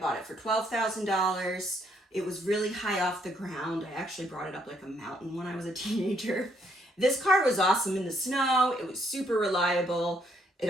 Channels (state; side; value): normal; both; correlation 0.70